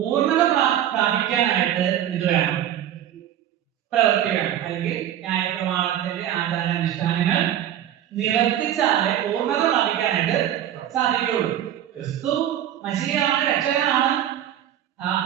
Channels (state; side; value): quieter; left; 11.1 dB